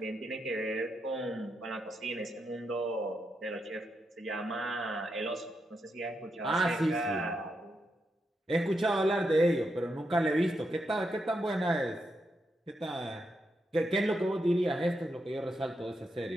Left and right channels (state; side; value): normal; both; correlation 0.83